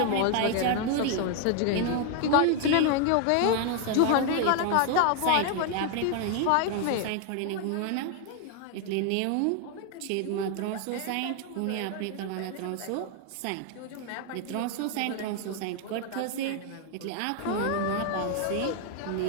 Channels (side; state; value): both; different; correlation 0.01